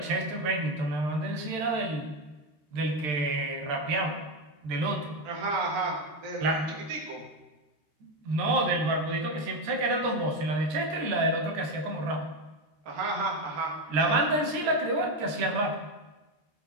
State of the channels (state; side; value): late; left; 13 ms